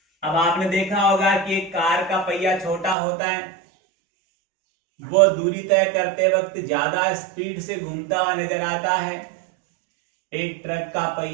अब आपने देखा होगा कि एक कार का पहिया छोटा होता है, वो दूरी तय करते वक्त ज्यादा स्पीड से घूमता हुआ नजर आता है। एक ट्रक का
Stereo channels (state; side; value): drops out; left; at 3.0 s